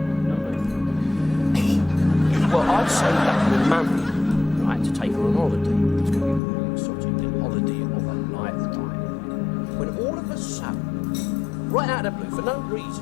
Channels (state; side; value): drops out; right; at 6.4 s